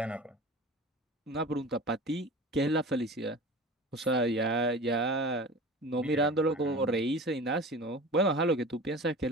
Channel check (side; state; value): both; normal; correlation 0.36